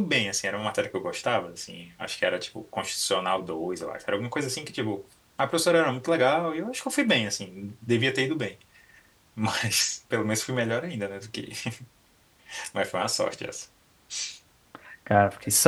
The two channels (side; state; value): both; identical; correlation 1.00